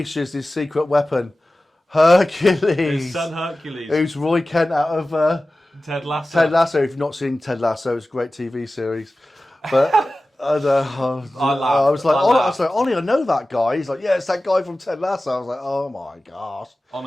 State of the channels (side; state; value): both; normal; correlation 0.96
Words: his secret weapon, Hercules. His son Hercules, who's Roy Kent out of Ted Lasso. Ted Lasso. If you've not seen Ted Lasso, it's a great TV series. But I was like, Ollie, I know that guy. He's like, yeah, it's that guy from Ted Lasso. I was like, oh my gosh.